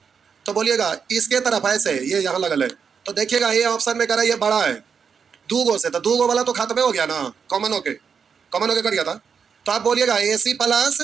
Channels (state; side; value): quieter; left; 6.4 dB